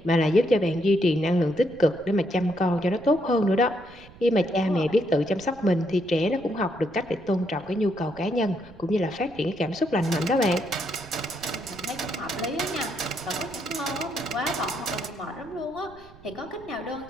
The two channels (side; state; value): right; noise; rumble, 21 dB below the sound